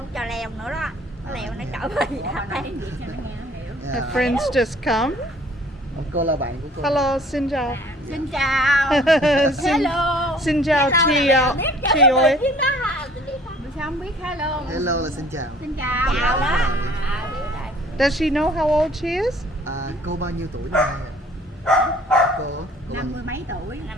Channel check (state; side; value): normal; both; correlation 0.54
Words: cho leo nữa đó. Nó leo nó trở về đây. Her friends just come. Cô là bạn của cô. Hello, xin chào. Xin chào. xin, Hello. xin chào chị chị ơi. Sao không biết hello? Hello là xin chào. Xin chào. Chào đó. Does she know how old she is? Cô bao nhiêu tuổi này? Cô 50 mấy tuổi.